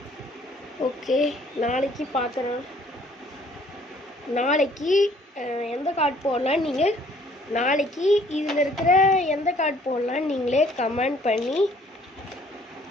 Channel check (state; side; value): normal; both; correlation 0.59